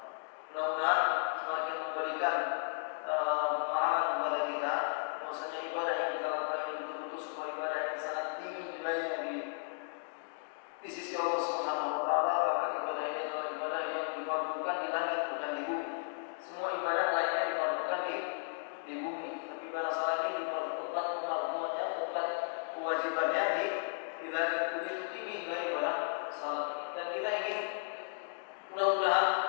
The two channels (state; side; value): silent; right; digital silence